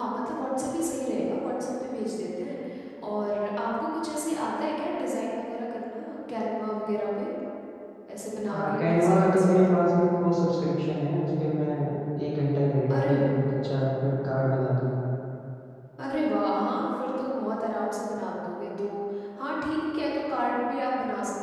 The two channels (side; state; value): both; identical; correlation 1.00